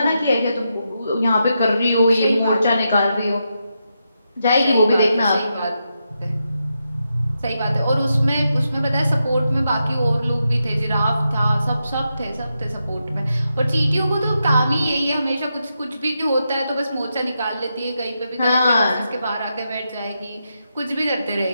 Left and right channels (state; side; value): inverted; both; correlation -0.85